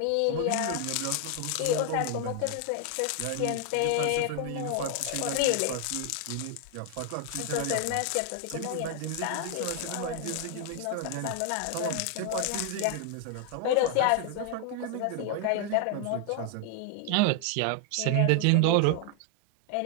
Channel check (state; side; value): different; both; correlation 0.00